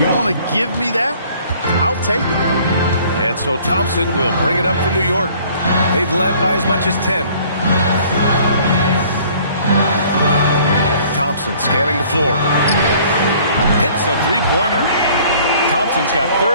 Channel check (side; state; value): both; inverted; correlation -0.55